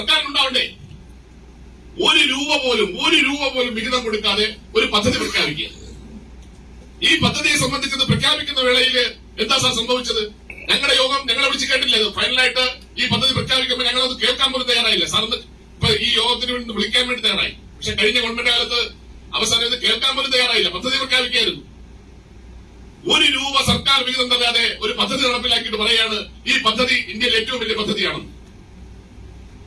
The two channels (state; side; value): identical; both; correlation 1.00